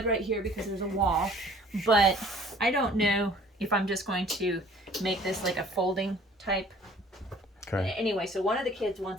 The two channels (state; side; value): normal; both; correlation 0.53